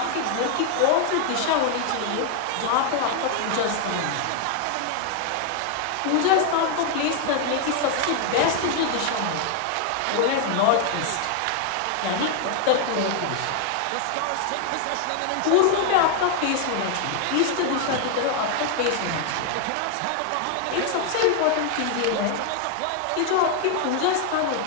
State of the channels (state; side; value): different; both; correlation 0.00